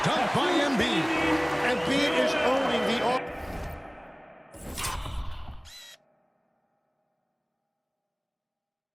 dunk by Embiid. Embiid is owning the offense.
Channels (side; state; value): both; identical; correlation 1.00